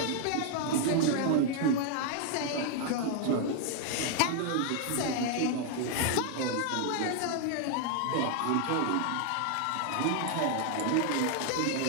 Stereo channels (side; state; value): both; different; correlation 0.00